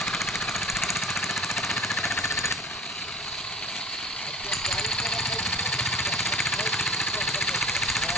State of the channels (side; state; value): both; normal; correlation 0.45